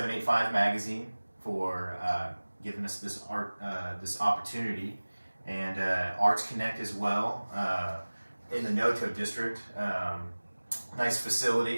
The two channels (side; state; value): both; inverted; correlation -1.00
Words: Magazine for giving us this opportunity, and ArtsConnect as well. In the Noto district, nice